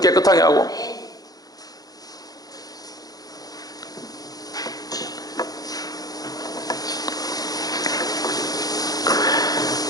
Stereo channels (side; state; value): right; late; 0.18 ms